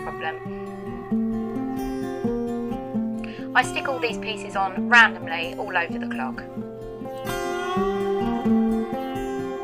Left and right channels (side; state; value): both; identical; correlation 1.00